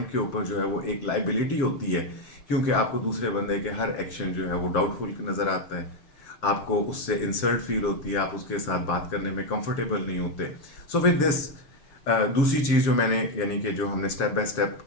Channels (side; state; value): right; late; 6.8 ms